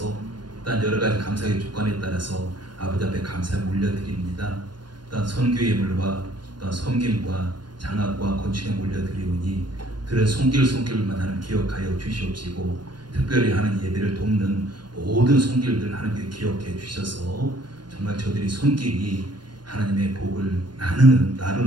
또한 여러 가지 감사의 조건에 따라서 아버지 앞에 감사를 올려드립니다. 또한 선교 예물과 또한 섬김과 장학과 건축에 올려드리오니 들은 손길만 하는 기억하여 주시옵시고 특별히 하는 예배를 돕는 모든 손길들 하나님께 기억해 주셔서 정말 저들이 손길이 하나님의 복을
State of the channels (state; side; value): late; left; 0.71 ms